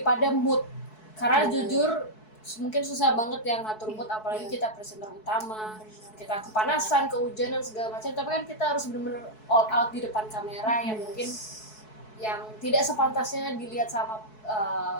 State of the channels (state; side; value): late; right; 4.6 ms